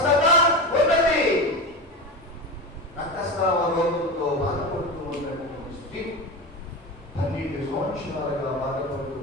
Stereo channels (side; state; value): both; normal; correlation 0.23